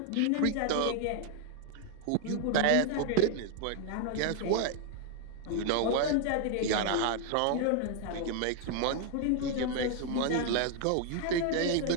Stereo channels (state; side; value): different; both; correlation 0.00